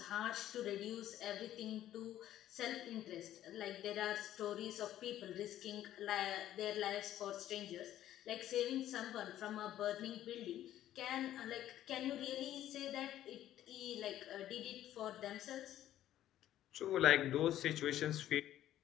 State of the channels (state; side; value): quieter; right; 12.5 dB